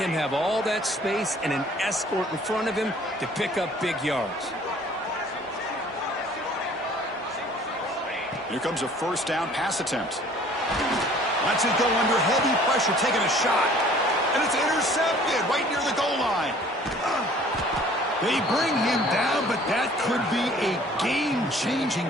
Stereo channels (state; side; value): normal; both; correlation 0.53